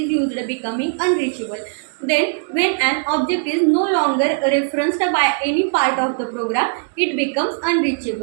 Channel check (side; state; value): left; silent; digital silence